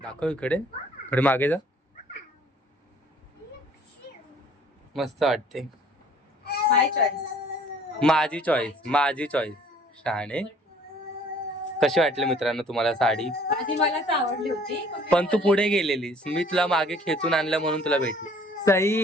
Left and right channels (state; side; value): normal; both; correlation 0.56